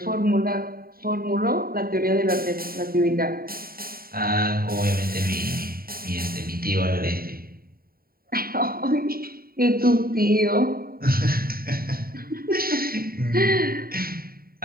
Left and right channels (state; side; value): late; left; 0.43 ms